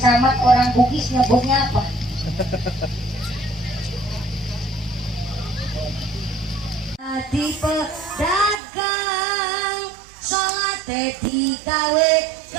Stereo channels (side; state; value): left; drops out; at 8.6 s